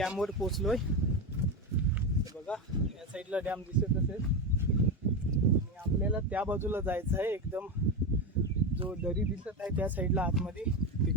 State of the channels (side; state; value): both; normal; correlation 0.15